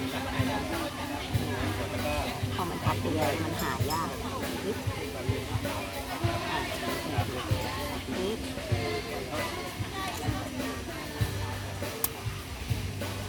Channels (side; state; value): both; identical; correlation 1.00